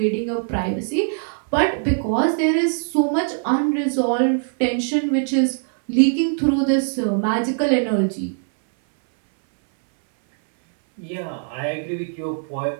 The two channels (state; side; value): silent; left; 62 dB below the other